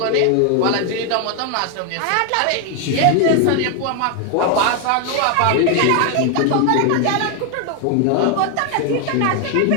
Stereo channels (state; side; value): different; both; correlation 0.01